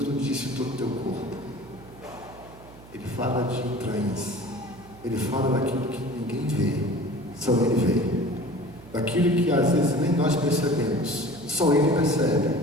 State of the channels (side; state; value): right; noise; hum, 21 dB below the sound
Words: não disse todo o teu corpo. Ele fala de entranhas. Ele fala daquilo que ninguém vê, só Ele vê. Daquilo que às vezes nem nós percebemos, só Ele